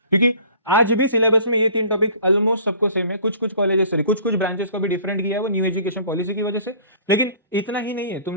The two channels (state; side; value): inverted; both; correlation -0.49